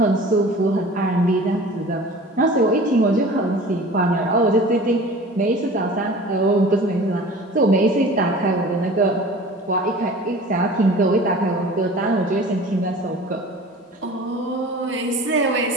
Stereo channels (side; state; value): both; normal; correlation 0.42